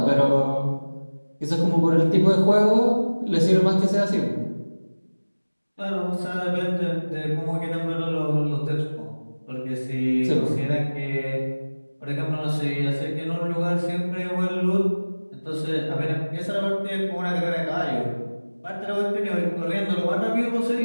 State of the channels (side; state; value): both; inverted; correlation -1.00